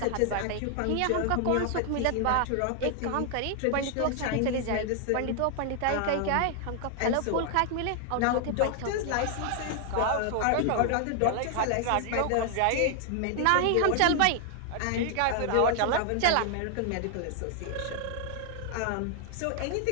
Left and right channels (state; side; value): different; both; correlation 0.00